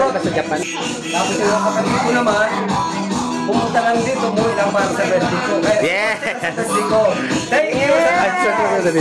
sa Japan. Tapos yung kapatid ko naman, pumunta lang dito, umuwi lang para sa birthday ko. Kaya, Yeah. sa birthday ko. Thank you!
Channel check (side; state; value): both; identical; correlation 1.00